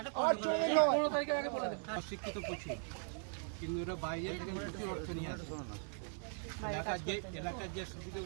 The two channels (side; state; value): left; silent; 52 dB below the other